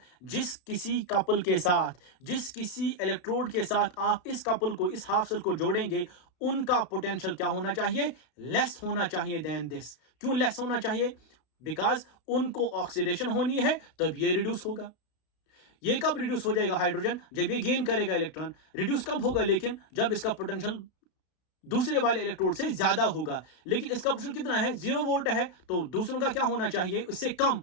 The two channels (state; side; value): late; right; 32 ms